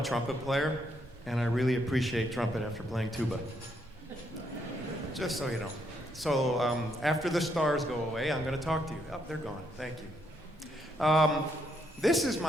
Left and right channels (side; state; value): both; normal; correlation 0.74